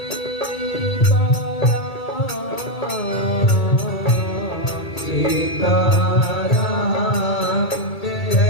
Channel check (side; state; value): right; late; 2.3 ms